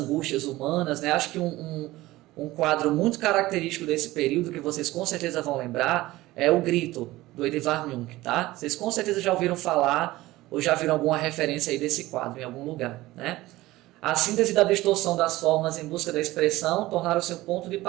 humanas, né? Acho que um quadro muito característico desse período, que vocês com certeza vão lembrar, é o Grito, do Edvard Munch, tá? Vocês com certeza já ouviram falar ou já viram alguma referência aí desse quadro em algum lugar, né? A síntese da distorção das formas em busca da expressão tornaram-se um ponto de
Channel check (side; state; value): left; quieter; 18.0 dB